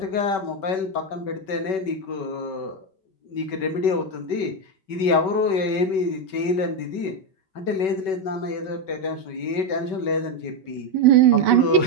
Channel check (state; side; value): late; right; 5.3 ms